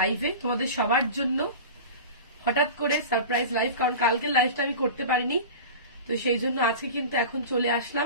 তোমাদের সবার জন্য। হঠাৎ করে সারপ্রাইজ লাইভ, কারণ কালকে লাইভটা আমি করতে পারিনি, তো সেই জন্য আজকে কিন্তু এখন চলে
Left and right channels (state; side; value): inverted; both; correlation -0.33